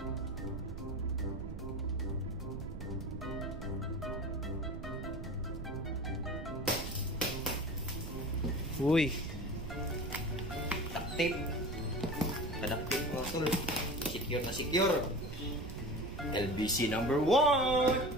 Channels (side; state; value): right; noise; rumble, 9 dB below the sound